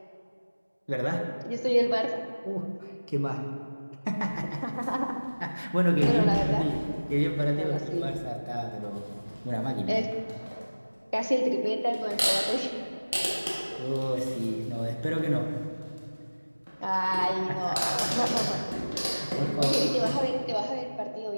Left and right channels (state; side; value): inverted; both; correlation -1.00